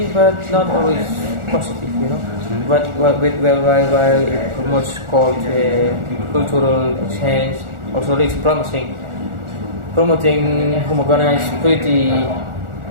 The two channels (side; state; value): left; late; 1.4 ms